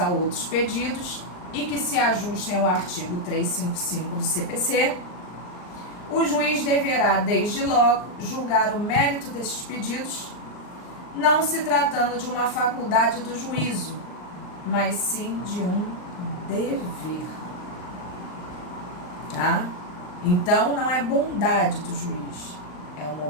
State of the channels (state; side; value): late; right; 39 ms